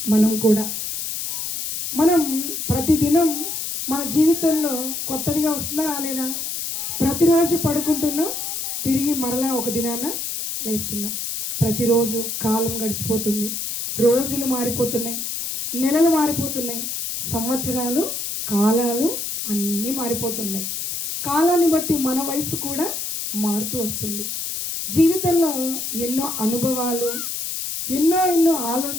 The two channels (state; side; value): noise; left; hiss, 4 dB below the sound